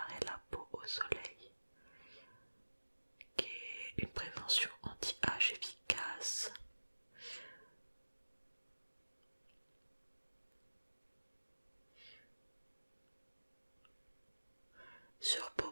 la peau au soleil, qui est une prévention anti-âge efficace. Sur peau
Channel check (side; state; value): both; inverted; correlation -1.00